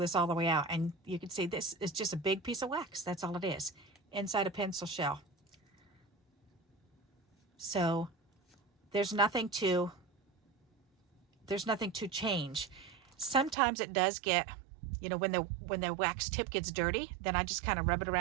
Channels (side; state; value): left; drops out; at 13.6 s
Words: all the way out, and you can see this is just a big piece of wax. That's all it is, inside a pencil shell. So there's nothing to change. Sometimes it does get, you know, when the wax tip gets dirty, then I just kind of rub it